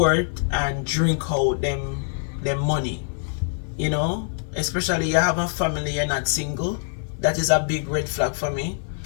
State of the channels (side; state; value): right; silent; 56 dB below the other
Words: and drink out them money. You know, especially you have a family, you're not single. That is a big red flag for me.